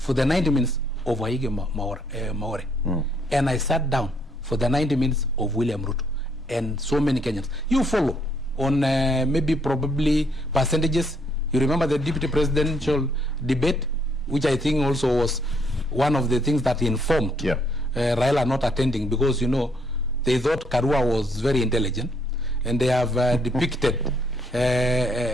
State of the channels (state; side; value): normal; both; correlation 0.69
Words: the 90 minutes of Waige Maore. And I sat down for the 90 minutes of William Ruto. And so many Kenyans. You follow on maybe probably percentages. You remember the deputy presidential debate, which I think also was one of the things that informed Raila not attending, because, you know, they thought Karua was very intelligent. And they have depicted